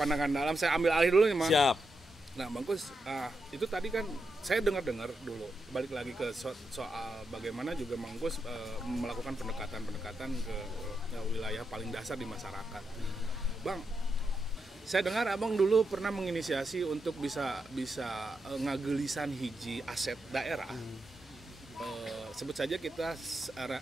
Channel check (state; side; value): normal; both; correlation 0.85